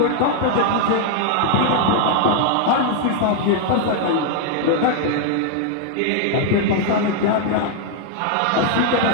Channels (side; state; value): both; different; correlation 0.00